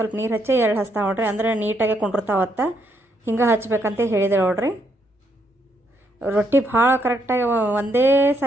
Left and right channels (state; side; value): normal; both; correlation 0.75